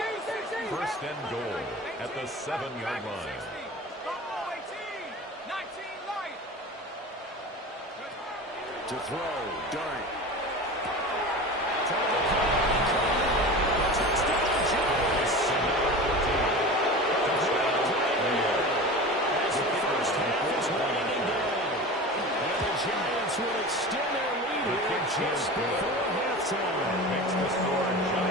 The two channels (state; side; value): normal; both; correlation 0.32